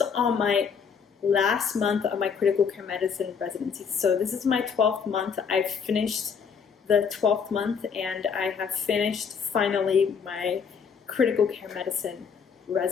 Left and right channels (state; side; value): quieter; right; 6.4 dB